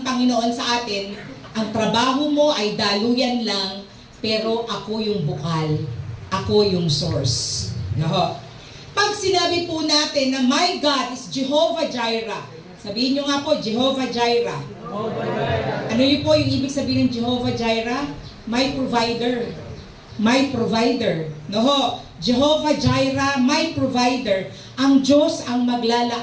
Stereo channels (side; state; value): both; identical; correlation 1.00